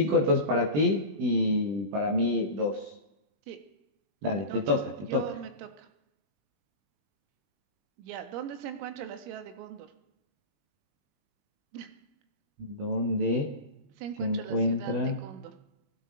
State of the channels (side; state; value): left; late; 20 ms